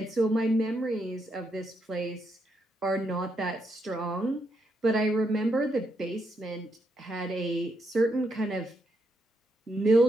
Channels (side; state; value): both; normal; correlation 0.79